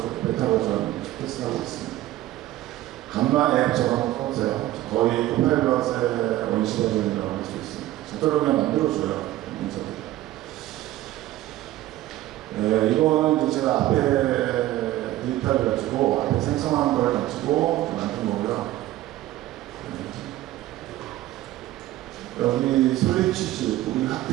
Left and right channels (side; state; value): left; quieter; 15.3 dB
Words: 베타 버전 테스트하고 있습니다. 간만 앱 적어놓고 보세요. 거의 코파일럿의 원시 버전이라고 할 수 있습니다. 저대로 그냥 만들어줘요. 문서들. 네, 이거는 이제 제가 앞에 데이터를 가지고 앞에 생성한 걸 가지고 만든 거고요. 여기 솔리치즈, 우리